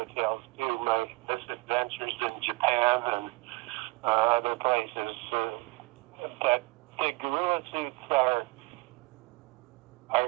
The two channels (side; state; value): left; quieter; 23.9 dB